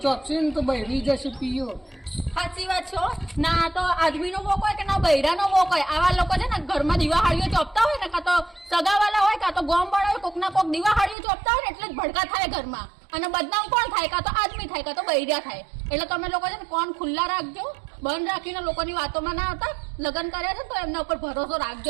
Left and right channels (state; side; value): drops out; left; at 11.2 s